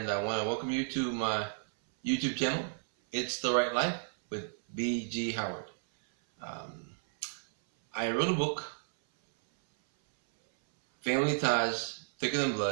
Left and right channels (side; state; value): left; silent; 56 dB below the other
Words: I want to welcome you to my YouTube channel. It's the Right Life with B.G. Howard. Um, I wrote a book, Family Ties Thicker Than